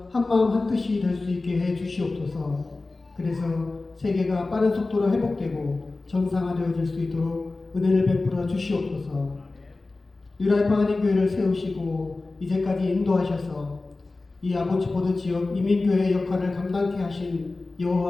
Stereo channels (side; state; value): right; quieter; 3.4 dB